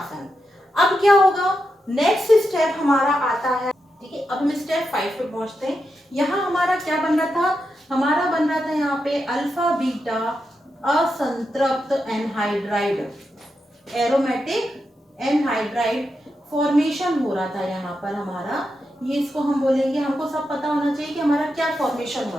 अब क्या होगा, नेक्स्ट स्टेप हमारा आता है। ठीक है, अब हम स्टेप 5 पे पहुंचते हैं। यहाँ हमारा क्या बन रहा था, हमारा बन रहा था यहाँ पे अल्फा बीटा असंतृप्त एनहाइड्राइड, एरोमेटिक एनहाइड्राइड फॉर्मेशन हो रहा था यहाँ पर हमारा। ये इसको हम बोलेंगे, हमको सब पता होना चाहिए कि हमारा क्या फॉर्मेशन हो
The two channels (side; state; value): both; normal; correlation 0.86